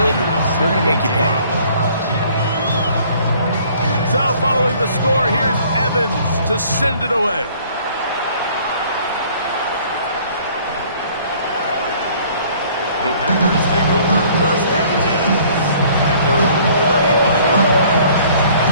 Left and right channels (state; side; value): inverted; both; correlation -0.56